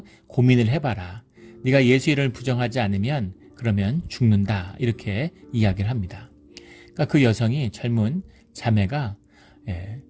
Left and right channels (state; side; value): identical; both; correlation 1.00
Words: 고민을 해봐라. 네가 예수 이름을 부정하지 않으면 그러면 죽는다. 이렇게 이야기를 합니다. 그러니까 그 여성이 젊은 자매가